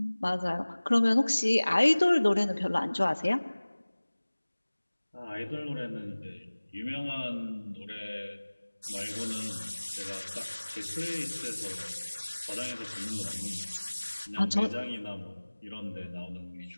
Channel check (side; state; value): both; inverted; correlation -1.00